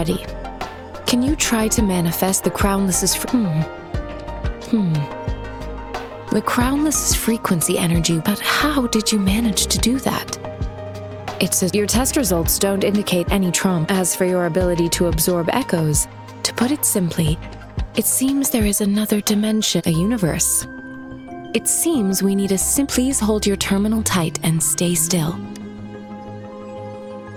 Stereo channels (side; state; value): both; identical; correlation 1.00